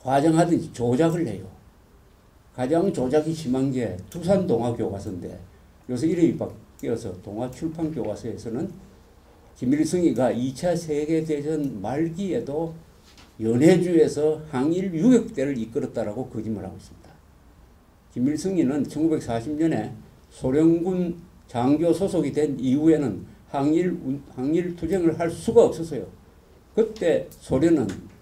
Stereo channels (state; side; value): identical; both; correlation 1.00